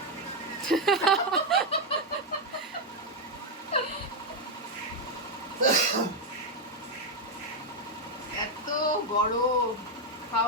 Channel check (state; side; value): normal; both; correlation 0.03